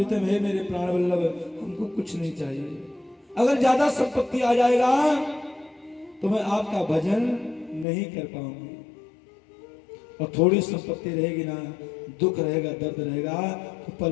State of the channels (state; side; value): drops out; right; at 7.9 s